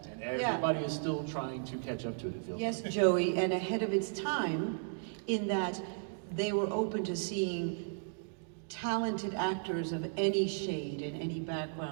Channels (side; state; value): left; silent; digital silence